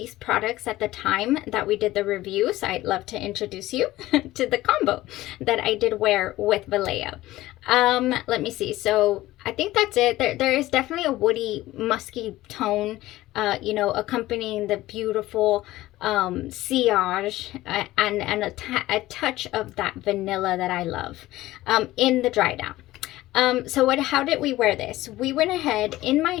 products at the time that we did the review. So I'd love to introduce you to the combo that I did wear with Valaya. Let me see. So I think that's it. There is definitely a woody, musky tone, you know, accompanying the beautiful sillage and a touch of that vanilla that I love in the dry down. So how did we wear this? We went ahead in my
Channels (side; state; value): right; quieter; 16.7 dB